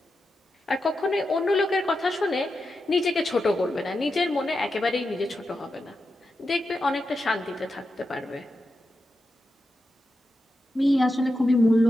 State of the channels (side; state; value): both; normal; correlation 0.89